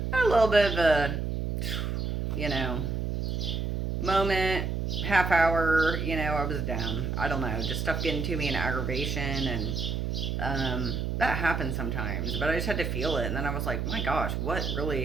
little bit of a, moment, half hour, I was down. I don't know, just stuff getting to me and aggravation, and that happens sometimes, but I just had to feel it, and then I was like, my gosh, why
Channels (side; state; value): right; noise; hum, 1 dB below the sound